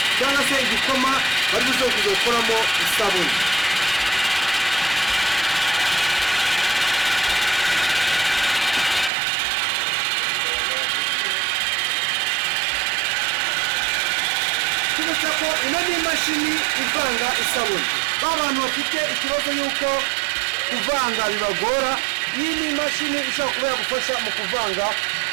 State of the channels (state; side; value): drops out; left; at 9.1 s